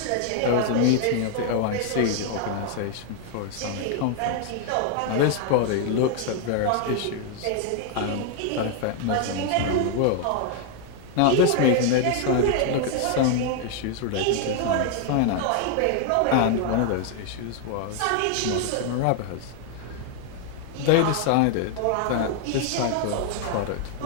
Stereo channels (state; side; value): different; both; correlation 0.00